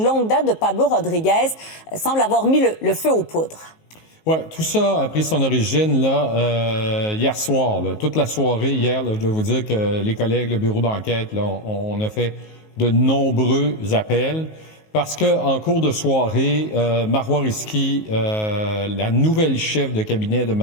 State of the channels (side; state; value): right; late; 19 ms